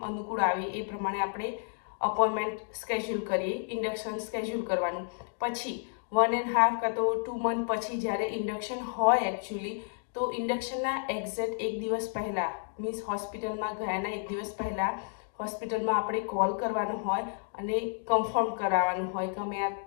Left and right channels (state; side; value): silent; right; digital silence